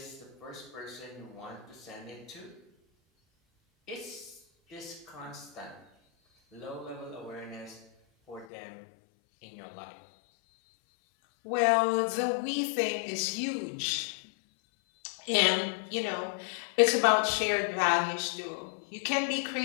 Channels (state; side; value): drops out; right; at 8.5 s